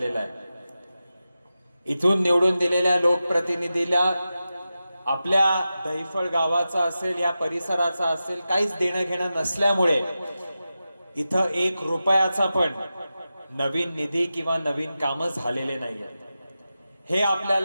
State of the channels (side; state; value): both; inverted; correlation -0.93